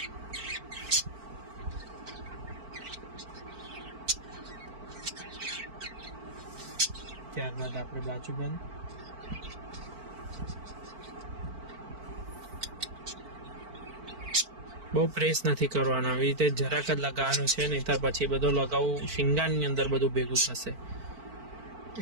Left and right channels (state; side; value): late; left; 4.5 ms